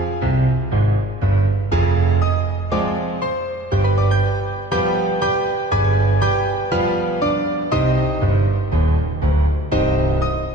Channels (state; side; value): normal; both; correlation 0.51